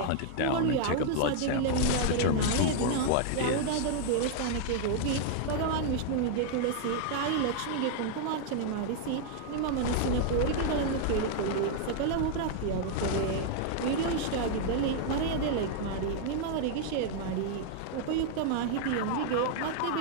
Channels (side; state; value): both; different; correlation 0.00